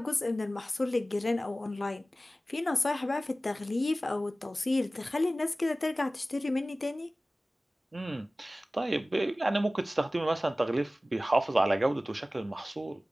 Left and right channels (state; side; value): normal; both; correlation 0.97